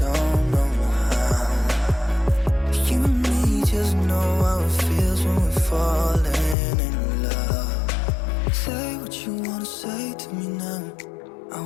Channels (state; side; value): drops out; right; at 6.6 s